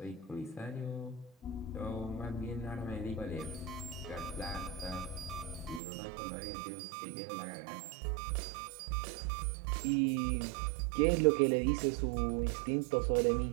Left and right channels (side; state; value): left; drops out; at 5.8 s